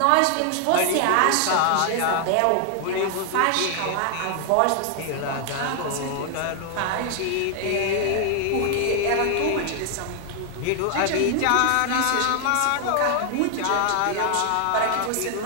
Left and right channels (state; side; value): different; both; correlation 0.00